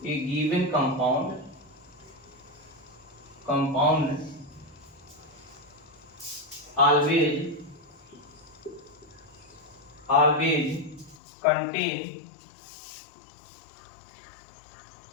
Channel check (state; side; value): drops out; right; at 11.2 s